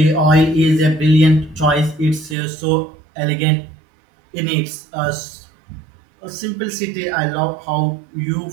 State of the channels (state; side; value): drops out; left; at 2.4 s